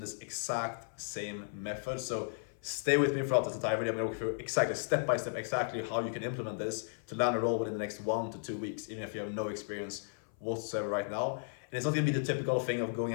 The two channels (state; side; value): silent; right; 55 dB below the other